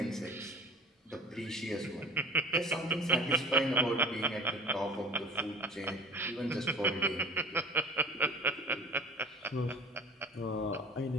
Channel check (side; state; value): both; normal; correlation 0.43